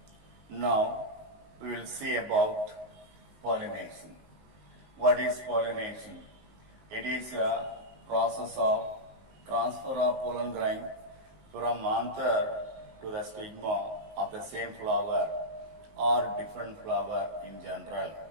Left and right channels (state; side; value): late; left; 19 ms